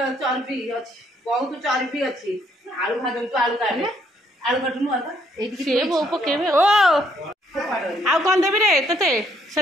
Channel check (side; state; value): both; normal; correlation 0.69